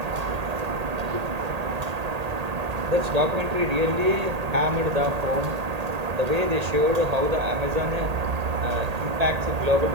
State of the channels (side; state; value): left; late; 1.8 ms